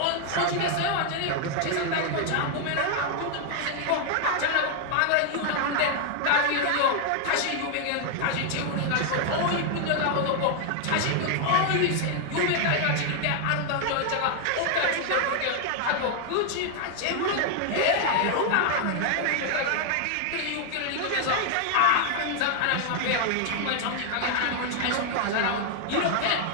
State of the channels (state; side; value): different; both; correlation 0.00